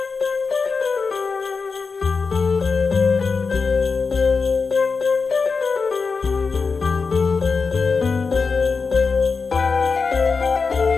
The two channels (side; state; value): right; quieter; 4.8 dB